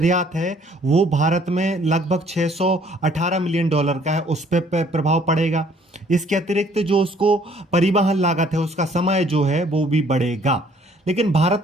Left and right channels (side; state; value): both; normal; correlation 0.60